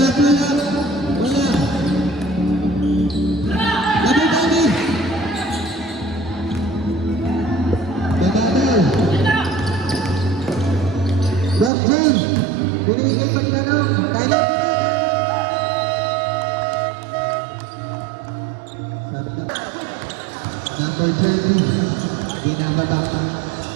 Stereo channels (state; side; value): drops out; left; at 11.7 s